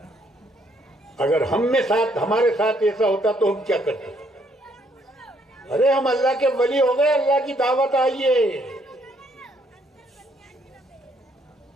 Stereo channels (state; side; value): normal; both; correlation 0.69